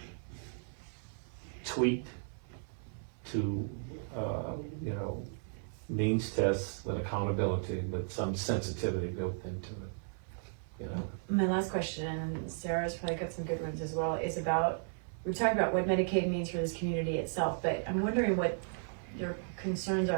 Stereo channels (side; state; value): left; silent; 54 dB below the other